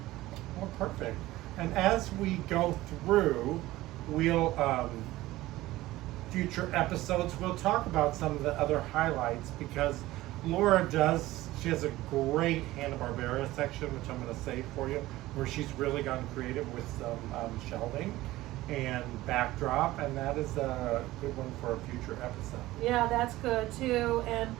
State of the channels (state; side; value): quieter; left; 17.2 dB